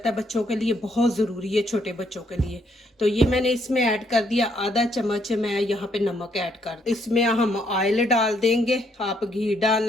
है, बच्चों के लिए बहुत ज़रूरी है, छोटे बच्चों के लिए। तो ये मैंने इसमें ऐड कर दिया, आधा चम्मच मैं यहाँ पे नमक ऐड कर, इसमें हम ऑयल डाल देंगे। आप घी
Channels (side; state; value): both; normal; correlation 0.71